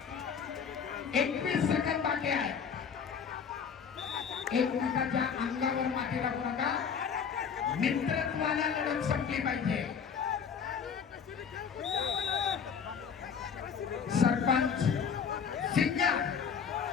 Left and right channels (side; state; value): right; quieter; 6.8 dB